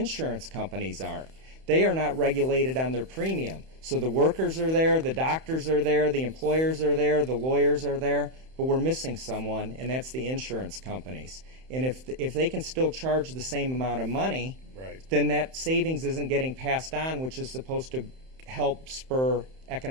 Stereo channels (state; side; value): late; left; 31 ms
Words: companies aren't. They are not regulated on their premium. So the workers are there, the doctors are there, the employers are there, the lawyers are there, but we're missing someone, and that's the insurance companies. And if they can still charge the same amount of money, Right. then that savings isn't getting passed on, which is supposed to help spur